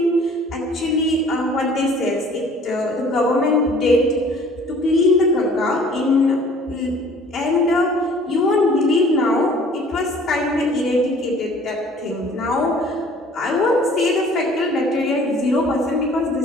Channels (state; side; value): normal; both; correlation 0.52